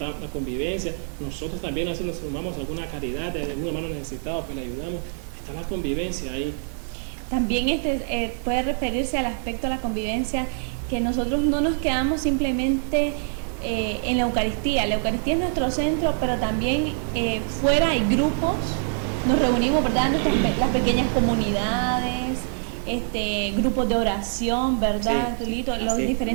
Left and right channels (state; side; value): silent; left; digital silence